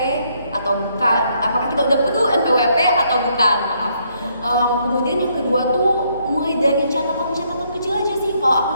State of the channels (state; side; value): inverted; both; correlation -0.71